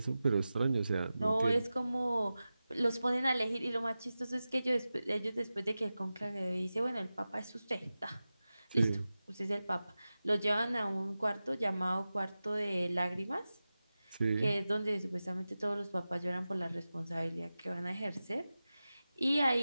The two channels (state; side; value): inverted; both; correlation -0.95